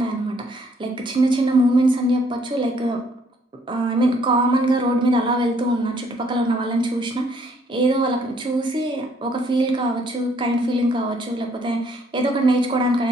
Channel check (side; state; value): both; normal; correlation 0.66